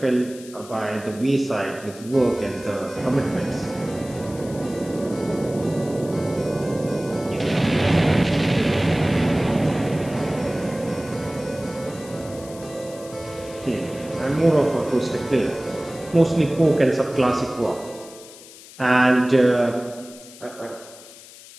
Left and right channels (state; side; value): noise; left; hiss, 19 dB below the sound